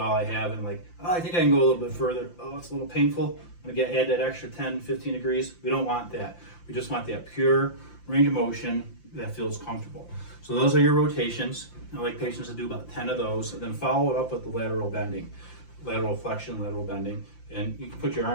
I have, and I think I can go a little bit further. Oh, it's a little painful. I'm going to add that extra 10, 15 degrees. We don't want that. We just want that pure range of motion that feels comfortable. So those are your rotations. I like patients to do about 10 of those, and then follow it up with the lateral bending, lateral flexion, lateral bending. And you can put your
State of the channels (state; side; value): late; right; 5.8 ms